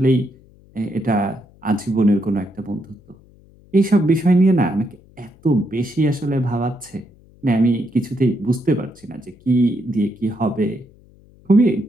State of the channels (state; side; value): noise; left; hum, 27 dB below the sound